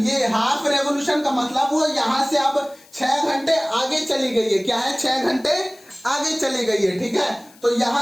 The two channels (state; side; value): noise; left; hiss, 26 dB below the sound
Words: ये हाफ रेवोल्यूशन का मतलब वो यहां से अब 6 घंटे आगे चली गई है। क्या है? 6 घंटे आगे चली गई है, ठीक है। तो